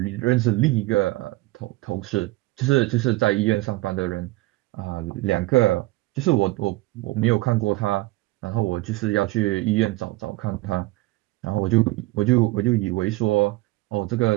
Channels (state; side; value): quieter; left; 19.7 dB